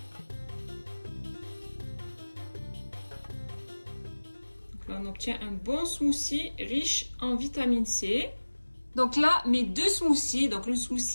Donc là, on obtient un bon smoothie riche en vitamine C. Donc là, mes deux smoothies, donc le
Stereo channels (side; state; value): both; inverted; correlation -1.00